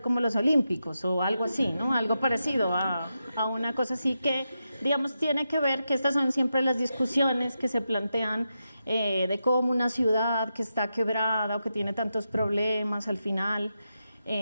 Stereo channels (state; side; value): inverted; both; correlation -0.88